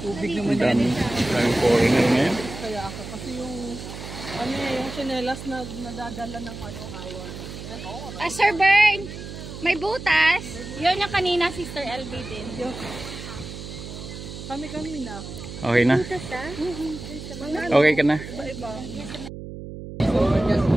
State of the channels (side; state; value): right; noise; hum, 11 dB below the sound